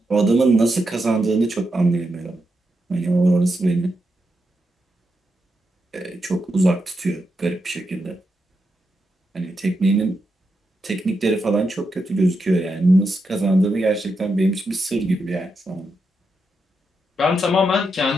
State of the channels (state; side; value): normal; both; correlation 0.85